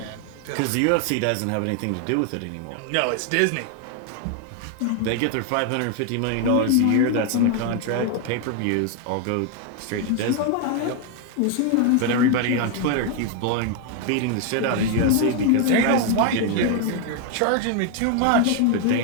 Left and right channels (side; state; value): both; different; correlation 0.01